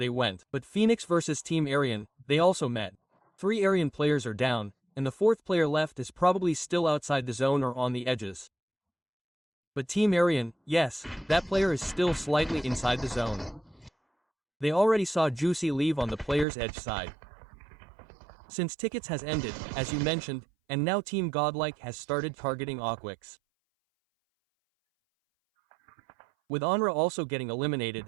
went, but Phoenix versus Team Aryan, they also met. 3 Aryan players are down, and the 4th player left is probably still outside the zone or on the edges. But Team Aryan, yes, that player is still slightly inside the zone. They already saw Juicy leave on the player's edge side. Since tickets has ended, as you mentioned, and now Team Godlike has started targeting Awkwix. With Onra also getting eliminated,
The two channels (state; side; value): drops out; left; at 16.4 s